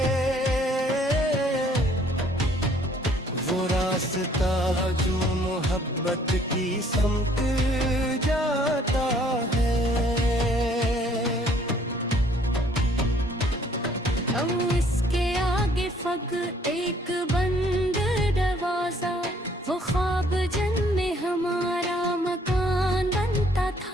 वो रास्ता जो मोहब्बत की समत जाता है। अब इसके आगे फग एक बंद दरवाजा, वो ख्वाब जिनमें हमारा मकान बनता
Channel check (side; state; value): both; normal; correlation 0.61